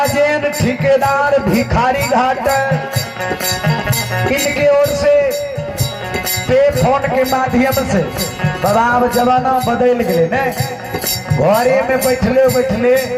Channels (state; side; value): identical; both; correlation 1.00